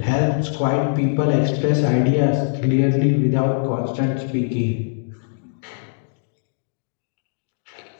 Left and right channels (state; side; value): silent; right; digital silence